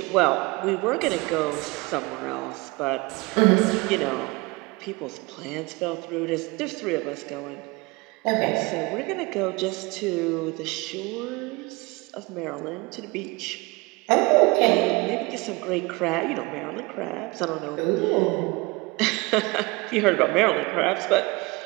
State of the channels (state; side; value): quieter; left; 24.6 dB